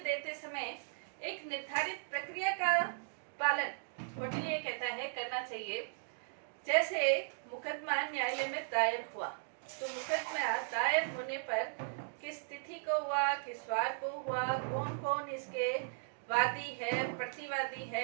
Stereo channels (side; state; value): left; silent; digital silence